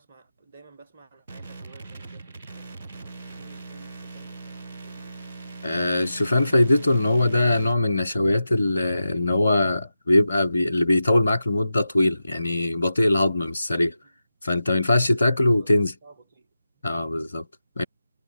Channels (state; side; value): inverted; both; correlation -0.91